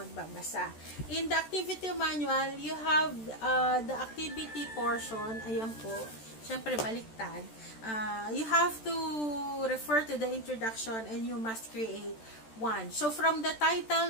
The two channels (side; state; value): right; late; 13 ms